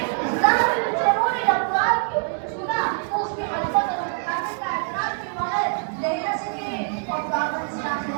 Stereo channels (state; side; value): silent; left; 63 dB below the other